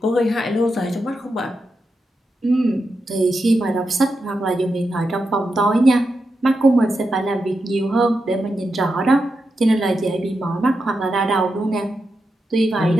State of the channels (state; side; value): normal; both; correlation 0.87